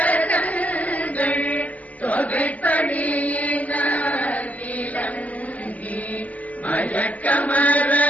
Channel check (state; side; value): late; right; 0.073 ms